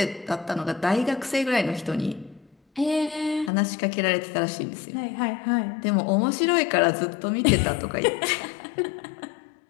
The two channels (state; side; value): drops out; right; at 3.5 s